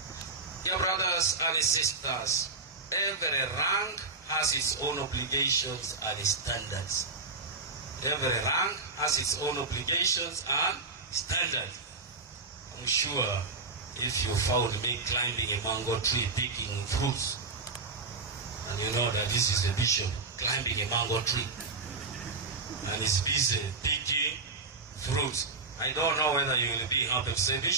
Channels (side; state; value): left; quieter; 3.9 dB